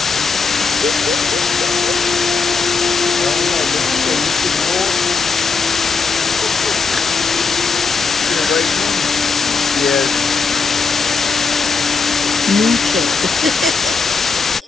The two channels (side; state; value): right; quieter; 4.7 dB